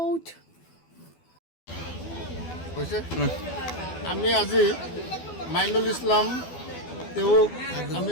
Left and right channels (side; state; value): right; late; 12 ms